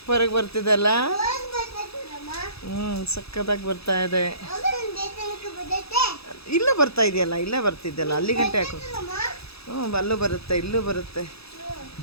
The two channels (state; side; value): late; right; 0.78 ms